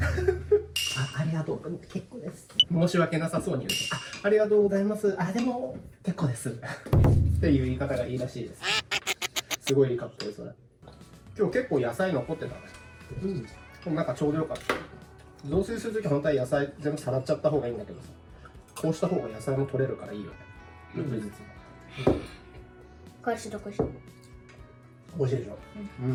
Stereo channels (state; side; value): identical; both; correlation 1.00